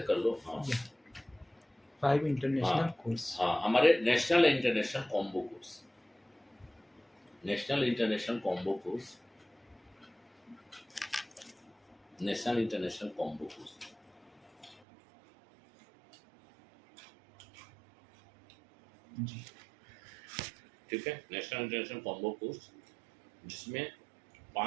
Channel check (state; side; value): drops out; left; at 14.8 s